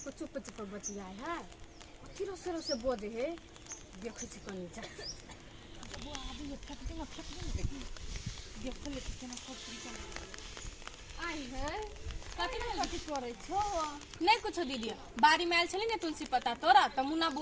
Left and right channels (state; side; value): identical; both; correlation 1.00